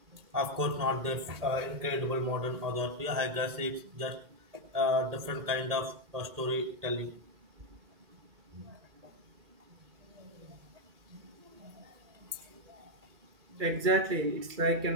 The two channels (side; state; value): left; late; 1.8 ms